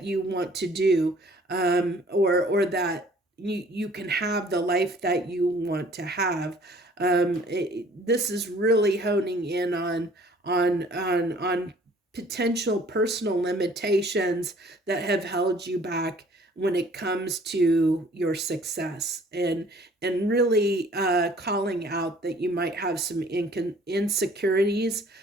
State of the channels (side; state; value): both; normal; correlation 0.54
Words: you want to do, or that you can have the life that you want to have. This is really honing in on potential personal limitations that have held you back when it comes to your success, and really calling out that you might have some insecurities